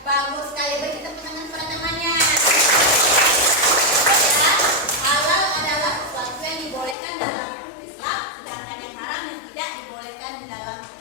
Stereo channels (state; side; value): drops out; right; at 7.0 s